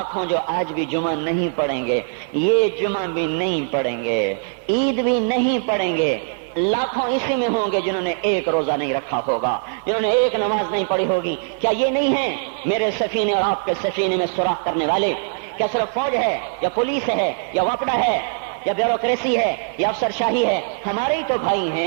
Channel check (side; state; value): left; silent; 55 dB below the other